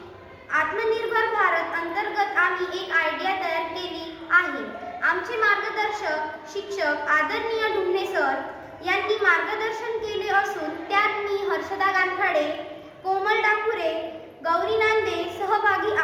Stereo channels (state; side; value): identical; both; correlation 1.00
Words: आत्मनिर्भर भारत अंतर्गत आम्ही एक आयडिया तयार केली आहे. आमचे मार्गदर्शक शिक्षक आदरणीय ढुमणे सर यांनी मार्गदर्शन केले असून त्यात मी हर्षदा कानफळे, कोमल डाकुरे, गौरी नांदे सहभागी